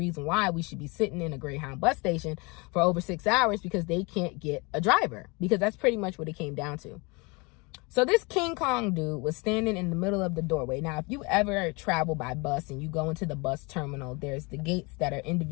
why we should be sitting in a Greyhound bus station for over 6 hours because they can't get a driver. Because that's pretty much what it came down to. So this King Kong dude was standing in the middle of the doorway. Now, if you ever travel by bus and you go into the bus terminal, there's the gates that are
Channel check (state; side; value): quieter; right; 27.8 dB